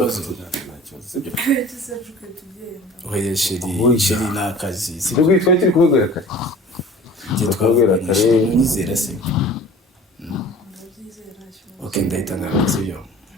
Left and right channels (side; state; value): both; normal; correlation 0.44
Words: Oya sheri n'akazi Sibwo twari turi kubwira kare. twabwira kare nizera se. Okay ndahita ngaruka sibyo.